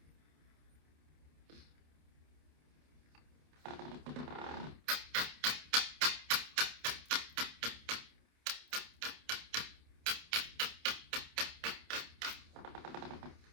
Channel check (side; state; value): left; late; 28 ms